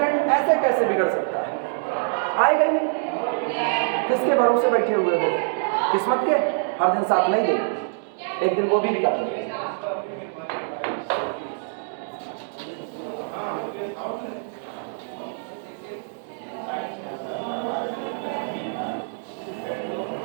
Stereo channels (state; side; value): silent; left; digital silence